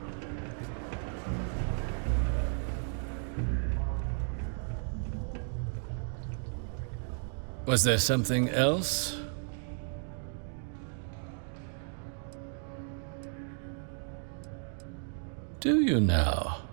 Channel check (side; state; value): left; silent; 55 dB below the other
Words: Was there something else? Do you now?